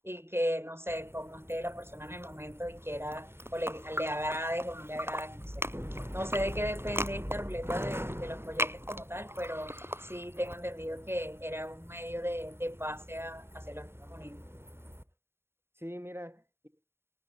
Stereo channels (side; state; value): left; late; 0.12 ms